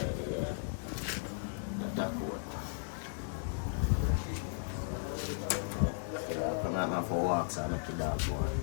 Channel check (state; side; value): silent; right; digital silence